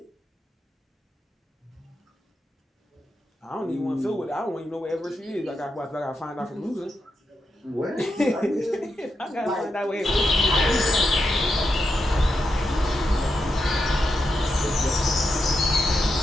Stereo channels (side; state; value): both; normal; correlation 0.85